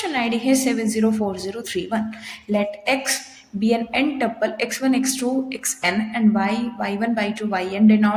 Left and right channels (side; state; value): both; identical; correlation 1.00